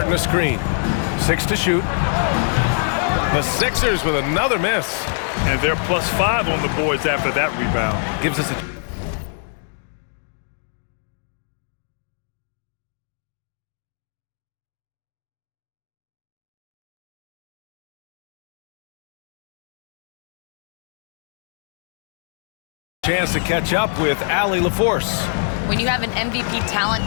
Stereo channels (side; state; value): right; silent; digital silence